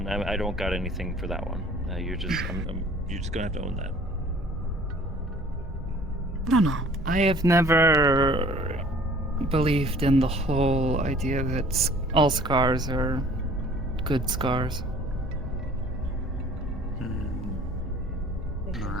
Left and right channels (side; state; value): both; normal; correlation 0.51